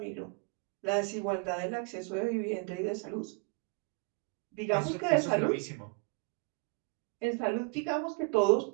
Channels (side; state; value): left; quieter; 33.7 dB